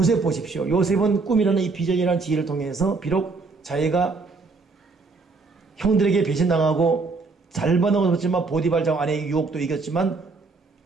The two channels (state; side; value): quieter; left; 4.1 dB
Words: 보십시오. 요셉은 꿈이라는 이 비전이라는 지혜를 통해서 비록 자기가 형들에게 배신당하고 잘 받아먹었지만 보디발장 아내의 유혹도 이겼지만